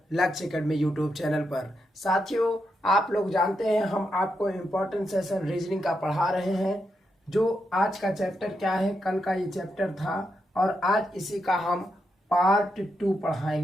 लक्ष्य एकेडमी यूट्यूब चैनल पर। साथियों, आप लोग जानते हैं हम आपको इम्पोर्टेंट सेशन रीजनिंग का पढ़ा रहे हैं। जो आज का चैप्टर क्या है, कल का ये चैप्टर था और आज इसी का हम पार्ट 2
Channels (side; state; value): both; normal; correlation 0.83